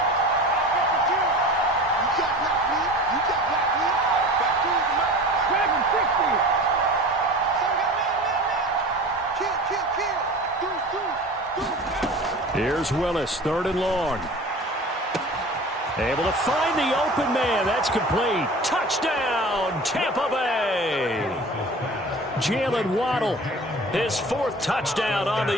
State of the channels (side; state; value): both; normal; correlation 0.38